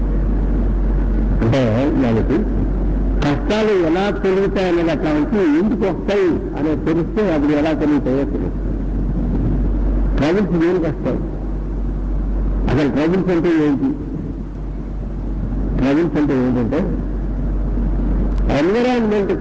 అంటే దానికి కష్టాలు ఎలా తొలుగుతాయి అనేది అట్లా వచ్చి ఇంటికి వస్తాయి అనేది తెలిస్తే అప్పుడు ఎలా తొలుగుతాయో తెలుసు. ట్రబుల్స్ దేనికి వస్తాయి? అసలు ట్రబుల్స్ అంటే ఏంటి? ట్రబుల్స్ అంటే ఏంటంటే ఎన్విరాన్మెంట్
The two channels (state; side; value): identical; both; correlation 1.00